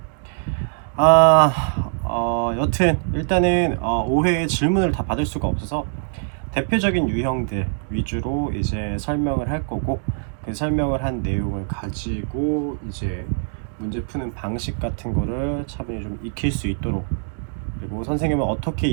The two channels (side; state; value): left; silent; digital silence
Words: 여튼 일단은 5회의 질문을 다 받을 수가 없어서 대표적인 유형들 위주로 이제 설명을 할 거고, 그 설명을 한 내용을 가지고 이제 문제 푸는 방식 같은 거를 차분히 좀 익힐 수 있도록, 그리고 선생님은 어떻게